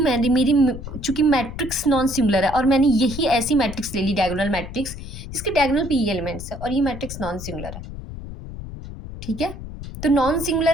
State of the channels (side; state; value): left; noise; rumble, 10 dB below the sound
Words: मेरी चूंकि मैट्रिक्स नॉन सिंगुलर है, और मैंने यही ऐसी मैट्रिक्स ले ली, डायगोनल मैट्रिक्स, जिसके डायगोनल P एलिमेंट्स है, और ये मैट्रिक्स नॉन सिंगुलर है, ठीक है? तो नॉन